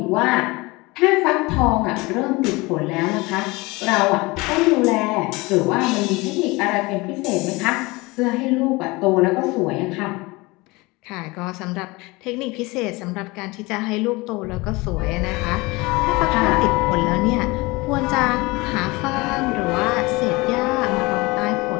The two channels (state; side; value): quieter; right; 23.5 dB